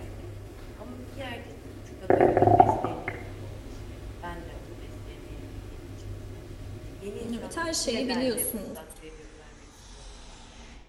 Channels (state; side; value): identical; both; correlation 1.00